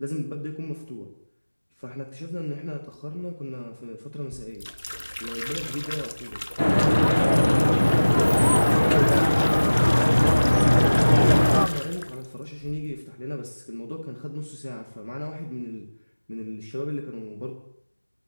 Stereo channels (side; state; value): both; inverted; correlation -1.00